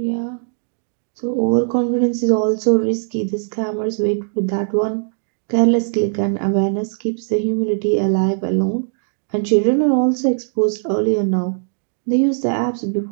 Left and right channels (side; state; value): left; silent; digital silence